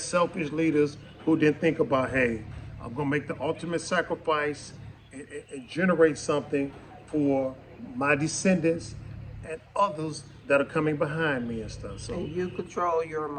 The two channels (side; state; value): both; identical; correlation 1.00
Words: leaders who didn't think about, hey, I'm gonna make the ultimate sacrifice and generate something for my descendants and others that are coming behind me and stuff. So And you control your